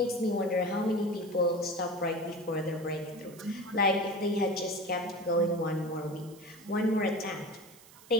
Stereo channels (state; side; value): noise; right; hiss, 22 dB below the sound